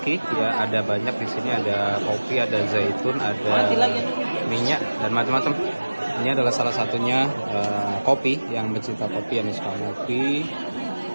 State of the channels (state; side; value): inverted; both; correlation -1.00